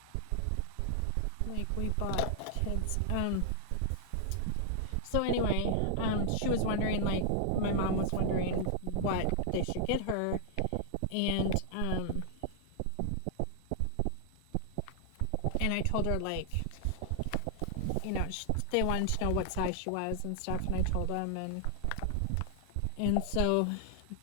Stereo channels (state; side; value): different; both; correlation -0.01